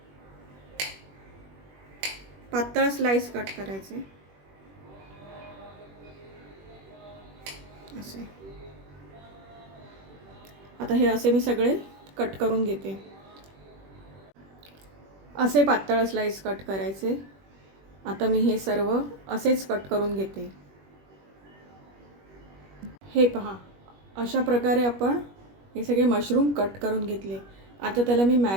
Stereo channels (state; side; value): late; left; 21 ms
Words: पातळ स्लाइस कट करायचे असे. आता हे असे मी सगळे कट करून घेते. असे पातळ स्लाइस कट करायचे. आता मी हे सर्व असेच कट करून घेते. हे पहा, अशा प्रकारे आपण हे सगळे मशरूम कट करून घेतले. आता त्याला मी